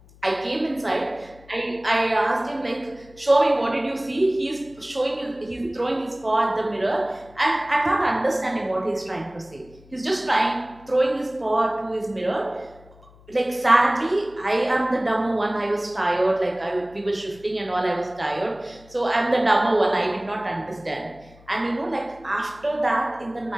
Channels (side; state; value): left; noise; hum, 25 dB below the sound